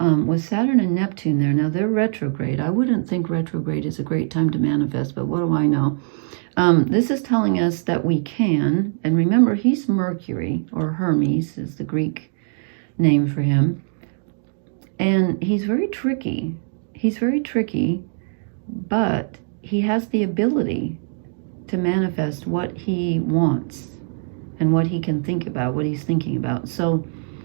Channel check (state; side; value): silent; left; digital silence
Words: with Saturn and Neptune there, now they're retrograde. I wouldn't think retrograde is a great time to manifest, but what do I know? This is telling us that we can, and remember, he's Mercury, or Hermes is the Greek name for him. And he's very tricky. He's very tricky, but he has the ability to manifest what he wants and what he can think about, what he's thinking about. So